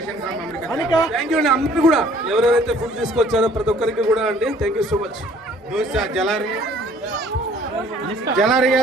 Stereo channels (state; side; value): normal; both; correlation 0.57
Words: Thank you అండి. అందరూ కూడా ఎవరెవరైతే ఫుడ్ తీసుకొచ్చారో ప్రతి ఒక్కరికి కూడా అండి థ్యాంక్ యూ సో మచ్. దోశ జలారి